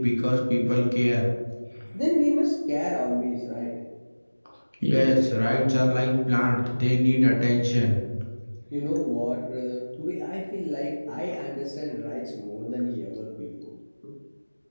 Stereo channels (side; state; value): both; inverted; correlation -1.00